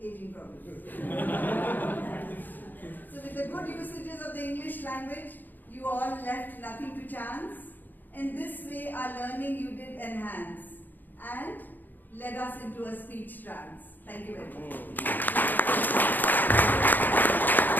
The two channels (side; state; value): right; late; 0.087 ms